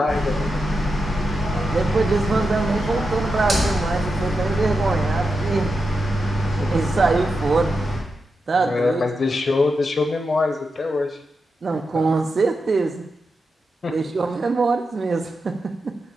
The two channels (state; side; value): normal; both; correlation 0.88